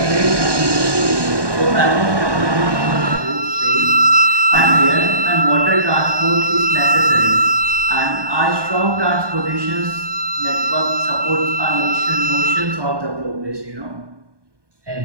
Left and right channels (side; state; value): left; late; 1.2 ms